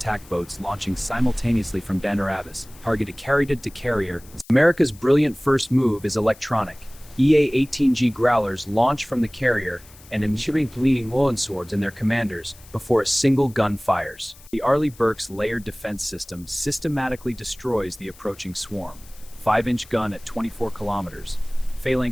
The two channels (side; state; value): left; noise; hiss, 23 dB below the sound